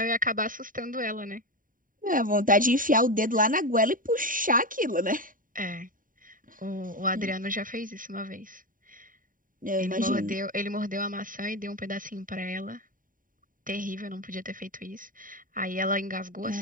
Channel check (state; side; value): late; left; 0.39 ms